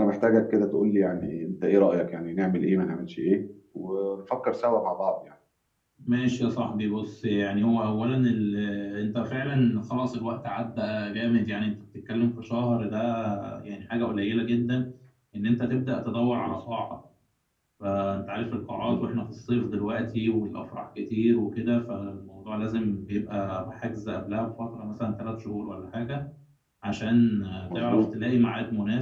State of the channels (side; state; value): both; identical; correlation 1.00